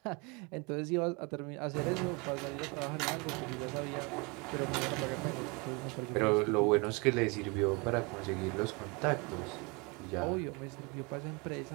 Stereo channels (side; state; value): left; quieter; 28.7 dB